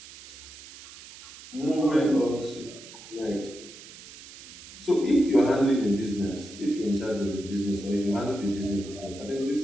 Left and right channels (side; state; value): right; noise; hiss, 17 dB below the sound